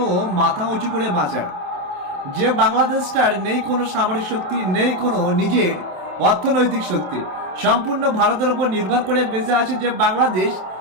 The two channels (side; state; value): left; late; 27 ms